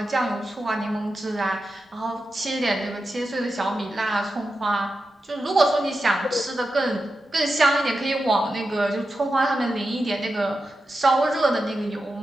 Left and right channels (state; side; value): normal; both; correlation 0.90